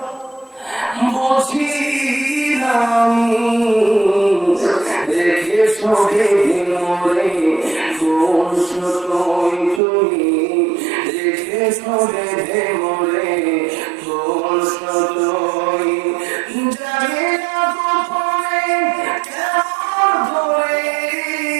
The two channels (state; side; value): drops out; left; at 9.8 s